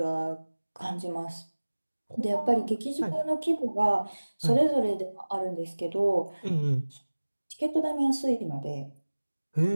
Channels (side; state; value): both; inverted; correlation -1.00